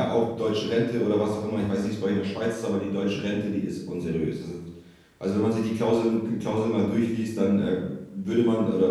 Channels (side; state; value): both; identical; correlation 1.00